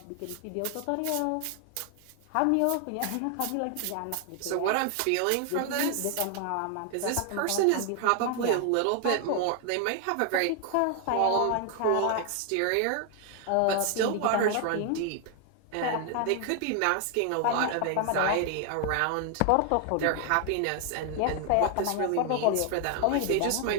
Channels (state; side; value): different; both; correlation 0.00